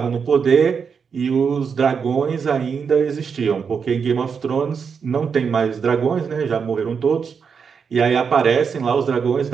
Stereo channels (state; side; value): quieter; left; 6.2 dB